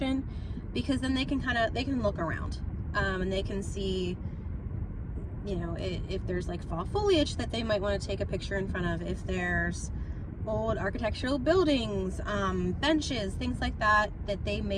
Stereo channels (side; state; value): both; identical; correlation 1.00